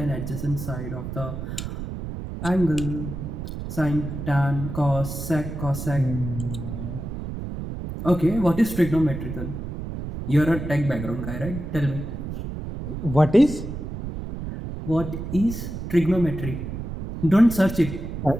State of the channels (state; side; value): noise; right; rumble, 7 dB below the sound